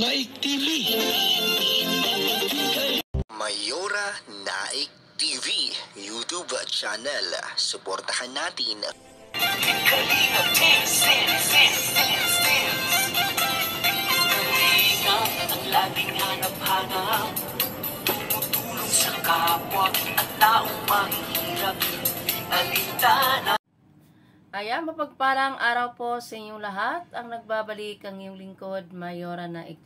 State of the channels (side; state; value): both; identical; correlation 1.00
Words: TV. Mayora Naik TV YouTube channel. Suportahan natin. Kalingap ang laging hanap-hanap, tumutulong sa kapwa at taong mahihirap. Alintana. Ayan, mapagpalang araw po sa inyong lahat. Ang nagbabalik ang iyong lingkod, Mayora Naik